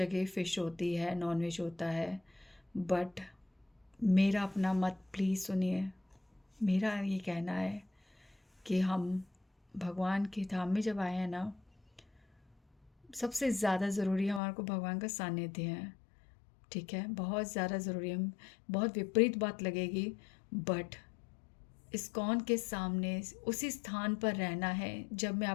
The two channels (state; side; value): drops out; right; at 14.4 s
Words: फ़िश होती है, नॉनवेज होता है, बट मेरा अपना मत प्लीज़ सुनिए। मेरा ये कहना है कि हम भगवान के धाम में जब आए हैं ना, सबसे ज़्यादा ज़रूरी हमारे को भगवान का सानिध्य है। ठीक है, बहुत ज़्यादा ज़रूरी है। बहुत विपरीत बात लगेगी, बट इस्कॉन के सामने उसी स्थान पर रहना है। जब मैं